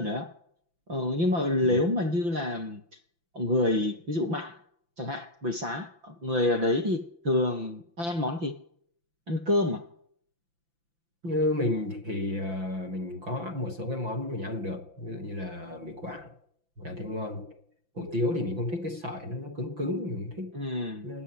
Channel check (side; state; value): left; late; 5.9 ms